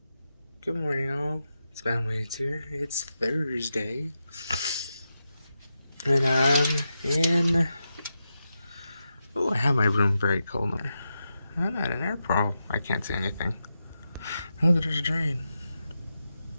Good morning, all. It's Spamwaits here. It's Thursday. And I'm in... Oh, I have my room very cold now. I'm at an airport. I can't see anything. Oh, there's a drain.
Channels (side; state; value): both; inverted; correlation -0.88